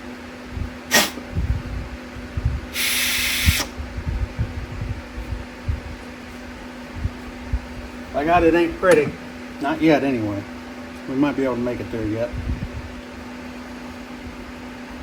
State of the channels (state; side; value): identical; both; correlation 1.00